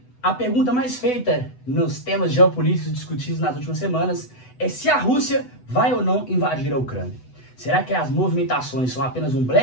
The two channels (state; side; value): late; right; 8.0 ms